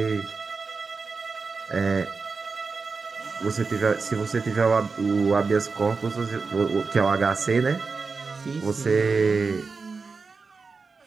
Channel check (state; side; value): quieter; left; 4.6 dB